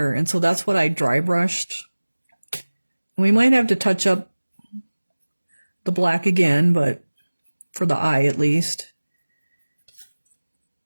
And so that's what I dry brushed. We might have to touch up the black again, but for the eye at least.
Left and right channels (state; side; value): inverted; both; correlation -1.00